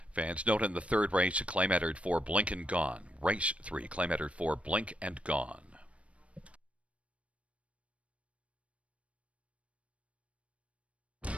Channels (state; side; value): late; left; 0.063 ms